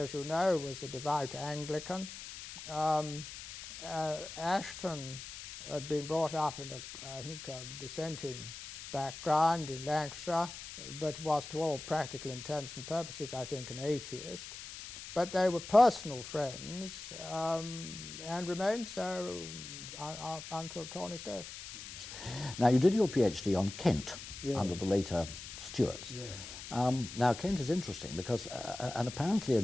you know, was a devout Anglican. Ashton had been brought up in I think a dissenting background in Lancashire, but was to all practical intents and purposes, I think, an atheist. But they were personal friends and remained so until Tawney's death. Now, you did your PhD on Kent, Yeah. under the later Stuarts. Yeah. Now, Kent is interesting because an apparently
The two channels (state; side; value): noise; left; hiss, 11 dB below the sound